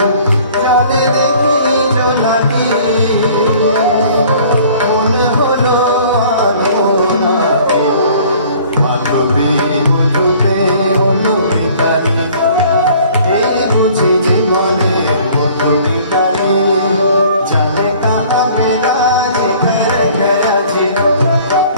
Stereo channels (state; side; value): inverted; both; correlation -0.52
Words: জলে দেখি জোনাকি মনে হলো আলো নাকি, মাধবী মধুপে হলো পিতালি,